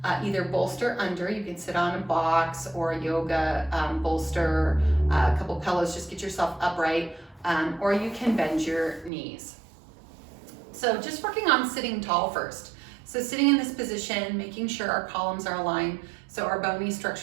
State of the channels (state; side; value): drops out; left; at 9.1 s